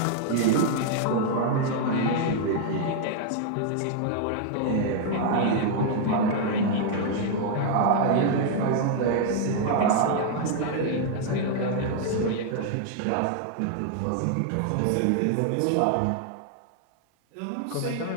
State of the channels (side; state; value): both; different; correlation 0.00